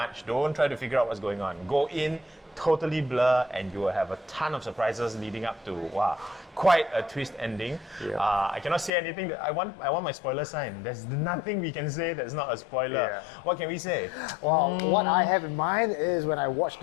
don't try to figure out what's going on. Go in, totally blur, and you will have a ton of surprises leading up to, wow, quite a twist ending. Yeah. I cannot say anything. I want my spoiler sign. There's nothing we can say that's not a spoiler. Yeah. What can we say? Well, what I have in mind is when I watched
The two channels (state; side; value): drops out; right; at 8.9 s